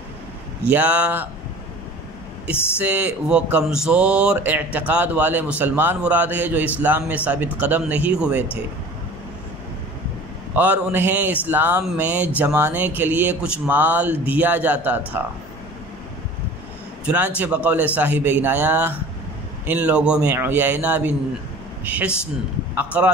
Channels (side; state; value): both; normal; correlation 0.42